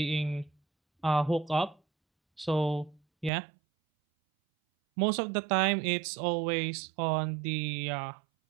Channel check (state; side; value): drops out; left; at 3.3 s